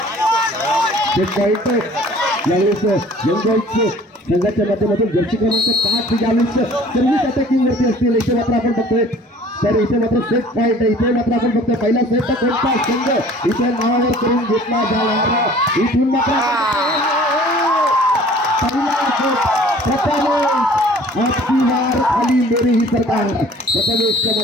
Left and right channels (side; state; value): both; normal; correlation 0.50